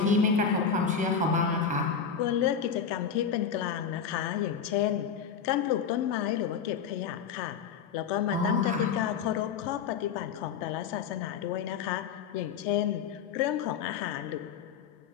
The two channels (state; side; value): quieter; right; 6.9 dB